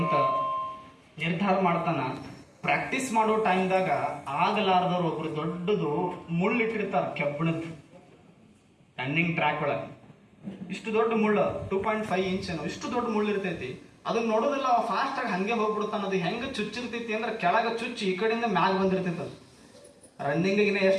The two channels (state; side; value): identical; both; correlation 1.00